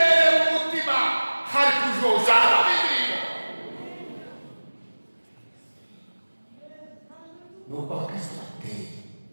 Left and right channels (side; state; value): both; inverted; correlation -1.00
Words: mu mutima hari kujoja indirimbo. Nuko abakristo bateye